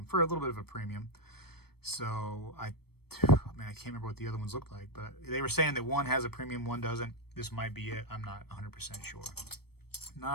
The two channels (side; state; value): right; late; 0.96 ms